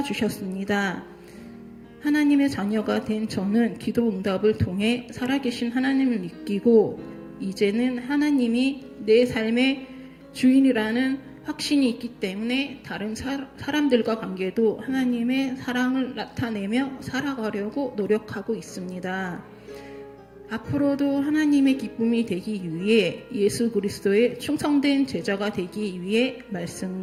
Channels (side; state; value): both; identical; correlation 1.00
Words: 주셨습니다. 하나님의 자녀가 된 저는 기도 응답을 통해 살아계신 하나님을 믿기고 이제는 하나님이 내 삶의 주인이라는 확신이 있기 때문에 다른 사람들과 관계도 하나님의 사랑을 나타내며 살아가려고 노력하고 있습니다. 앞으로도 하나님의 기쁨이 되기 위해 예수 그리스도의 충성된 제자가 되기 위해